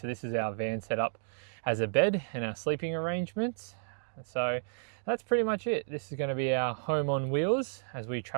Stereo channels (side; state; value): left; silent; digital silence